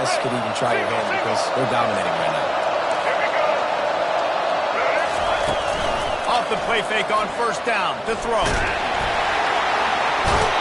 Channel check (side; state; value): both; identical; correlation 1.00